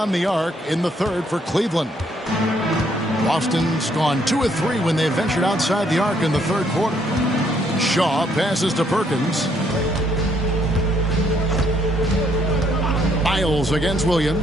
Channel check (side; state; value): both; normal; correlation 0.70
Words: the arc in the third for Cleveland. Boston's gone 2 of 3 when they ventured outside the arc in the third quarter. Shaw passes to Perkins. Miles against